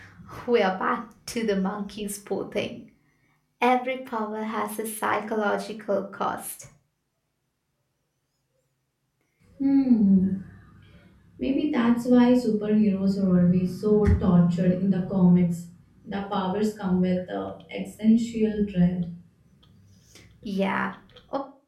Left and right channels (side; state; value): both; identical; correlation 1.00